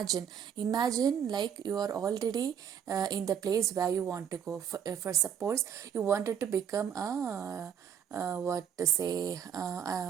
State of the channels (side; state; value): left; quieter; 8.4 dB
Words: like you are already in the place where you want to go. For suppose you wanted to become a what to say